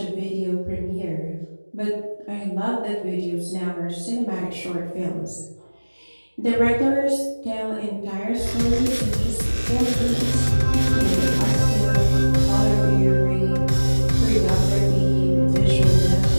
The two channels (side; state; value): both; inverted; correlation -1.00